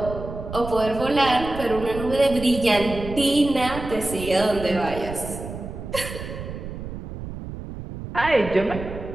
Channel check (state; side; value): noise; right; rumble, 9 dB below the sound